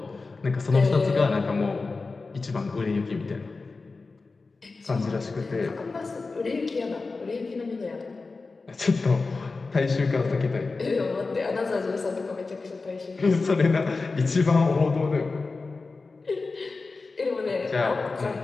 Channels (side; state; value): right; quieter; 3.9 dB